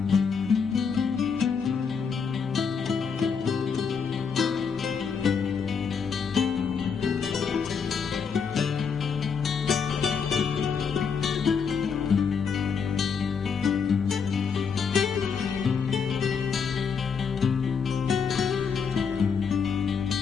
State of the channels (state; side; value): quieter; right; 6.1 dB